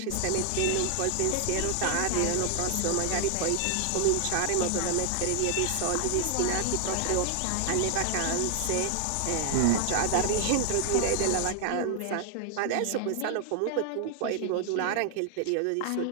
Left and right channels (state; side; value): different; both; correlation 0.00